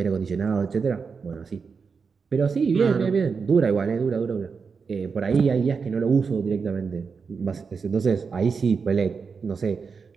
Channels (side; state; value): left; quieter; 5.4 dB